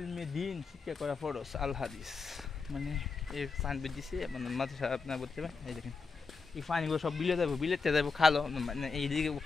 দিন শিক্ষা করা ফরজ, আল হাদিস। মানে এই সাইনবোর্ড দিছে, মানে মাদ্রাসা আপনার বলতে পারেন। এই দেখেন এই পানিগুলো সব বিলেতে যাবো খালো, মানে এইদিকে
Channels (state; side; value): quieter; right; 4.7 dB